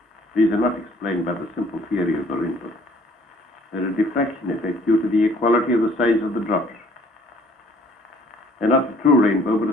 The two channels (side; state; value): both; normal; correlation 0.58